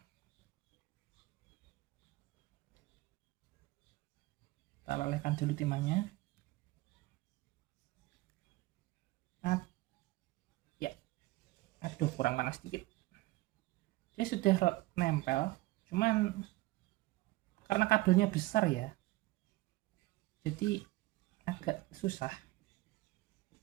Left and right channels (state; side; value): quieter; left; 19.4 dB